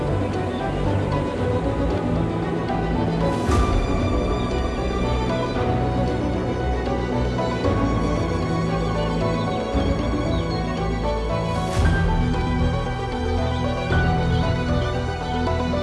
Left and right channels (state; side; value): identical; both; correlation 1.00